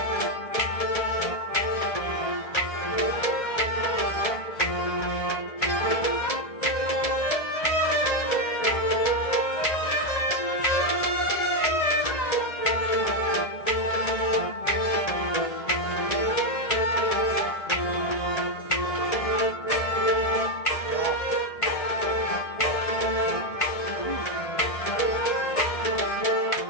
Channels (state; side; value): late; right; 1.7 ms